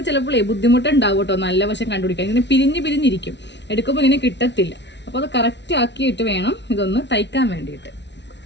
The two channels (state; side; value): late; right; 0.51 ms